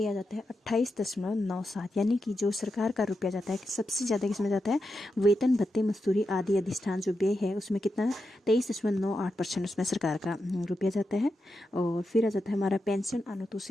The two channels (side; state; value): both; normal; correlation 0.88